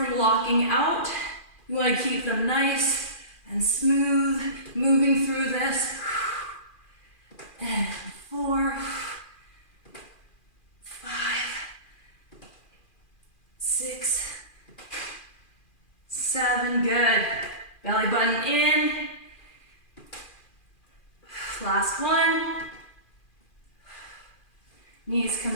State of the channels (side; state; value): right; late; 2.4 ms